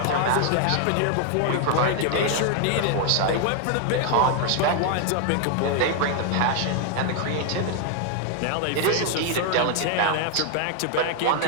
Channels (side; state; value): both; different; correlation 0.00